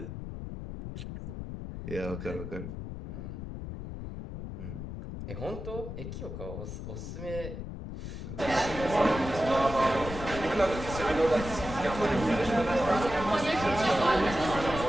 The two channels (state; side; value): noise; left; rumble, 8 dB below the sound